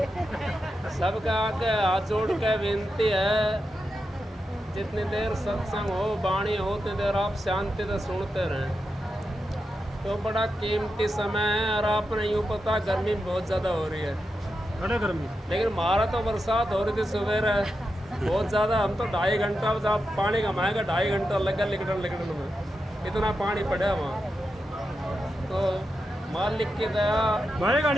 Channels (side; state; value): both; normal; correlation 0.88